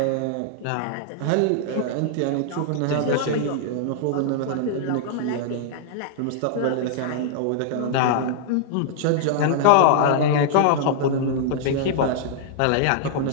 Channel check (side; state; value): both; different; correlation -0.01